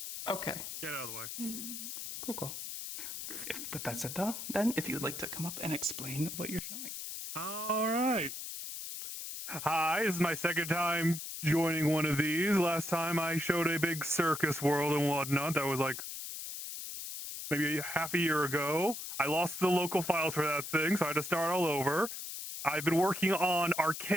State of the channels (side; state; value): left; noise; hiss, 7 dB below the sound